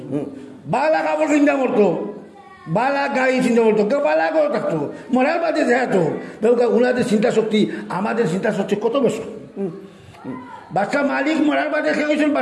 বালা কাপড় চিন্তা করতো বালা গাড়ি চিন্তা করতো কেউ বালা করে থাকতো মরার বাদে যেহেতু ওনাদের চিন্তা শক্তি আমাদের চিন্তা শক্তি কত বেশি বাচ্চা মালিক মরার বাদে খেয়ে গেছেন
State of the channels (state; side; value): identical; both; correlation 1.00